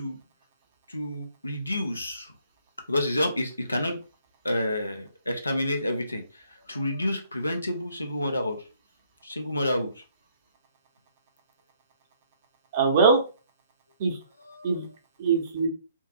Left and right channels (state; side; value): inverted; both; correlation -0.65